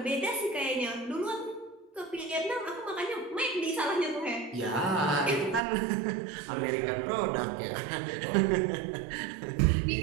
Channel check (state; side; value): drops out; left; at 5.6 s